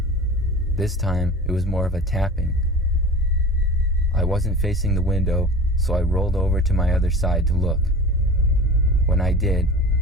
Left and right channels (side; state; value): both; normal; correlation 0.37